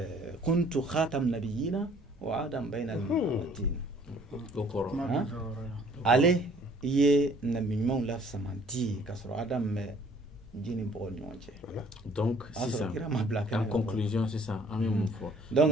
kuntu khatam nabiyina wa adam bayna al-matin ale ye nabi ɲumanw la samanti ka sɔrɔ adam bɛ ji ni bɔgɔ ni ɲɔgɔn cɛ. Donc sisan en conclusion sisan an bɛ mun fɔ. Donc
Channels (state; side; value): normal; both; correlation 0.57